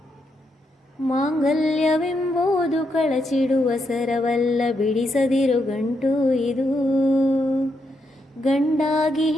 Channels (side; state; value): both; normal; correlation 0.80